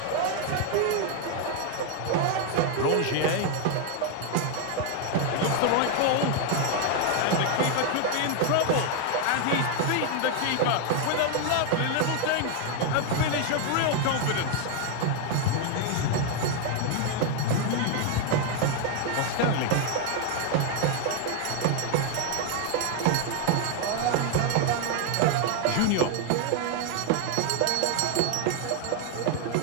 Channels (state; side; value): different; both; correlation 0.00